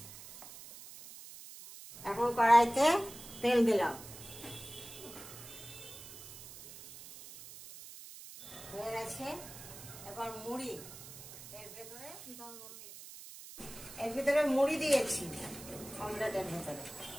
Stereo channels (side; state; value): right; noise; hiss, 14 dB below the sound